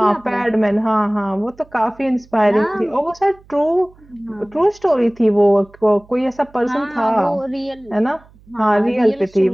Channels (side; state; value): right; noise; hum, 27 dB below the sound